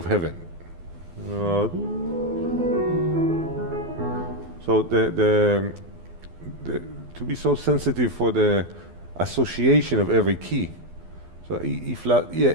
heaven. So the to be so sensitive for the association of every key. So E flat, yeah,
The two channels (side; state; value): left; late; 12 ms